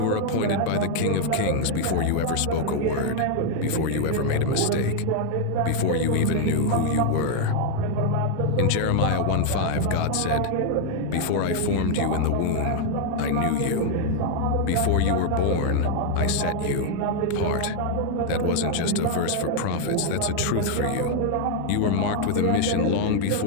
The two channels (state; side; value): different; both; correlation 0.00